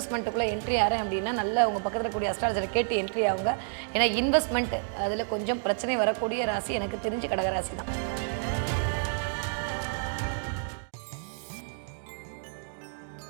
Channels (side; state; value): left; silent; digital silence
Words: என்ட்ரி ஆகிறேன் அப்படின்னா நல்ல உங்கள் பக்கத்தில் கூடிய அஸ்ட்ராலஜரை கேட்டு என்ட்ரி ஆகுங்க. ஏன்னா இன்வெஸ்ட்மெண்ட் அதில் கொஞ்சம் பிரச்சனை வரக்கூடிய ராசி எனக்கு தெரிஞ்சு கடகராசி தான்.